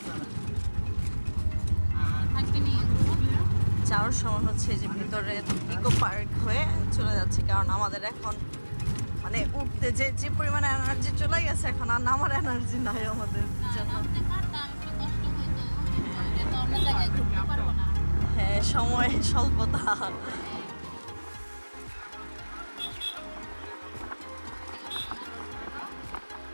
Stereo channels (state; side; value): inverted; both; correlation -1.00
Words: যাওয়ার সময় হচ্ছে যে ভিতরে ইকো পার্ক হয়ে চলে যাচ্ছে, কারণ আমাদের এখন মানে উঠতে যে পরিমাণে এনার্জি চলে গেছে, এখন আর নামার এনার্জি নাই আমাদের জন্য। হ্যাঁ, সময় স্বল্পতা।